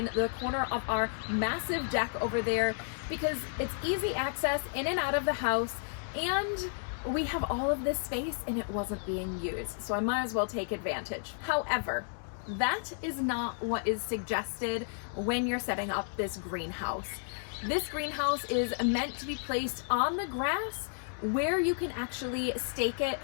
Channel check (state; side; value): silent; right; digital silence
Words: the corner of our massive deck over there because it's easy access in and out of the house, and we have all of this space and it wasn't being used, so I might as well take advantage. However, that is not what is suggested when you're setting up this greenhouse. This greenhouse is meant to be placed on the grass where you can actually stake it